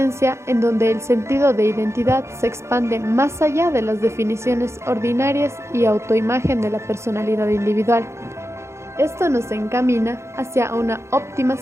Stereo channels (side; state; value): left; late; 0.13 ms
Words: en donde el sentido de identidad se expande más allá de las definiciones ordinarias y autoimagen de la personalidad individual. Esto nos encamina hacia una óptima